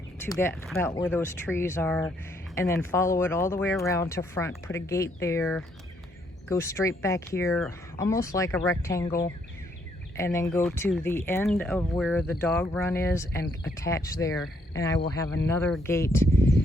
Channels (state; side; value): normal; both; correlation 0.71